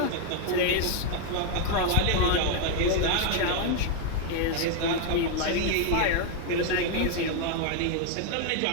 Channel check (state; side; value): different; both; correlation 0.00